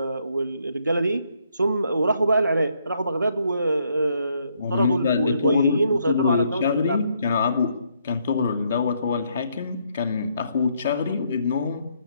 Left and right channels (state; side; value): inverted; both; correlation -0.72